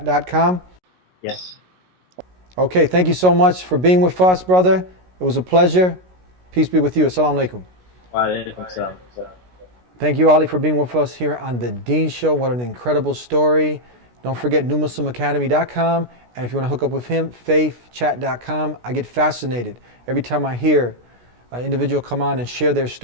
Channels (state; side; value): late; left; 16 ms